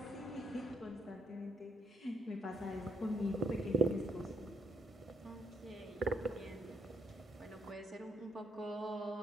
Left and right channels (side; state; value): both; normal; correlation 0.70